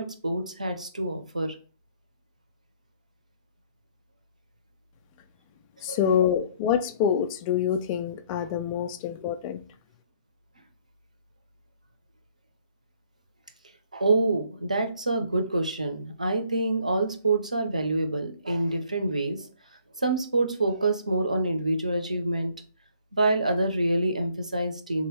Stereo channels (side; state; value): both; inverted; correlation -0.63